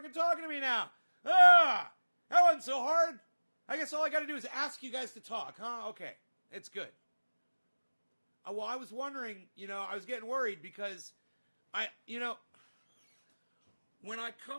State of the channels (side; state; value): both; inverted; correlation -1.00